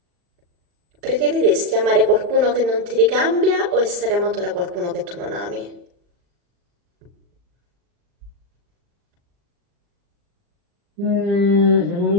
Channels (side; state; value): left; late; 40 ms